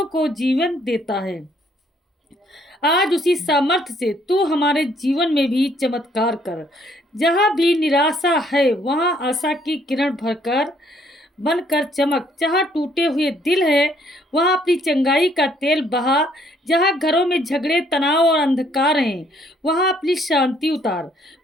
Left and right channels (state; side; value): normal; both; correlation 0.66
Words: को जीवन देता है, आज उसी सामर्थ्य से तू हमारे जीवन में भी चमत्कार कर। जहाँ भी निराशा है वहाँ आशा की किरण भरकर बनकर चमक। जहाँ टूटे हुए दिल है वहाँ अपनी चंगाई का तेल बहा। जहाँ घरों में झगड़े, तनाव और अंधकार हैं वहाँ अपनी शांति उतार।